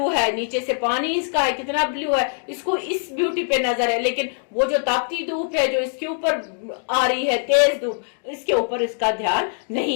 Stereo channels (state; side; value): silent; right; 64 dB below the other